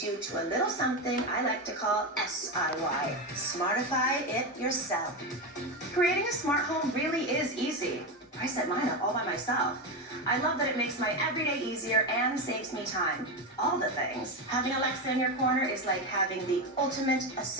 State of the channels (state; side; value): normal; both; correlation 0.15